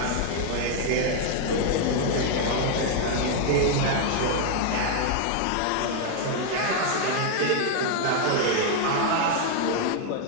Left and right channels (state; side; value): different; both; correlation 0.00